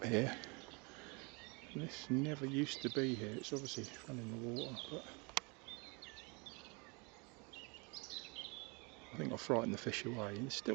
here. This never used to be here. It's obviously run in the water, but I think I frightened the fish away. There's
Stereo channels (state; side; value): quieter; left; 30.5 dB